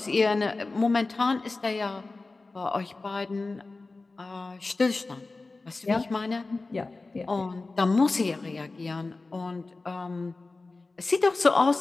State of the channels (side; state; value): right; quieter; 3.5 dB